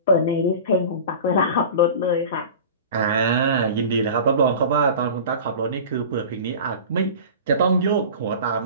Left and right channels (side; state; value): both; inverted; correlation -0.36